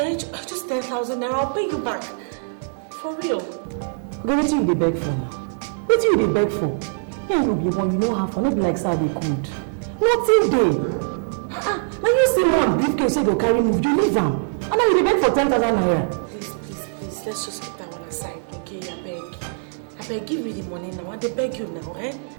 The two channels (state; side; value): silent; left; digital silence